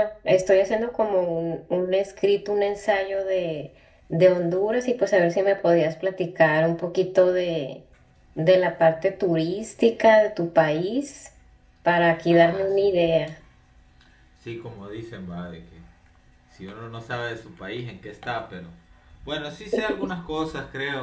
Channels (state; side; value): identical; both; correlation 1.00